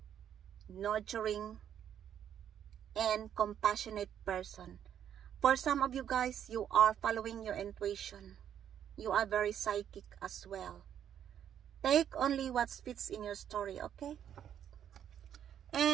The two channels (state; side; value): quieter; left; 9.6 dB